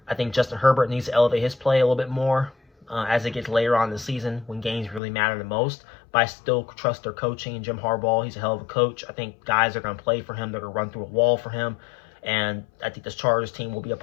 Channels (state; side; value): drops out; right; at 5.0 s